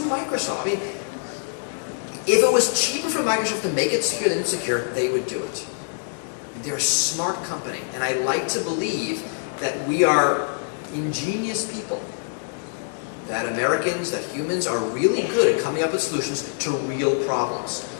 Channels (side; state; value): right; silent; digital silence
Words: Microsoft, I mean, if it was cheaper for Microsoft to make it secure than insecure, they would do it. They're a smart company, and I like to believe that we are ingenious people. That Americans, that humans are really good at coming up with solutions to real problems.